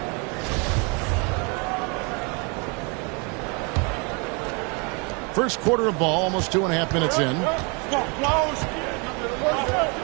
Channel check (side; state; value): left; quieter; 32.6 dB